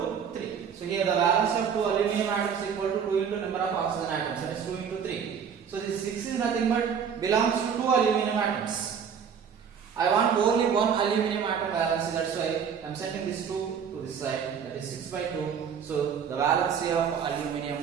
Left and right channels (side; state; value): left; quieter; 7.2 dB